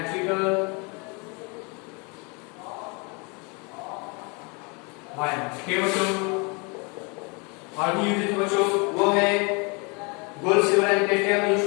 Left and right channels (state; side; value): quieter; right; 31.4 dB